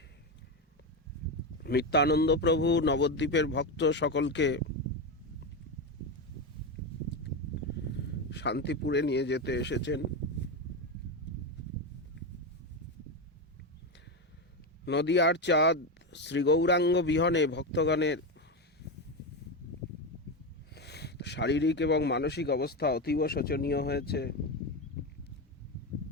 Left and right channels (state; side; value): normal; both; correlation 0.13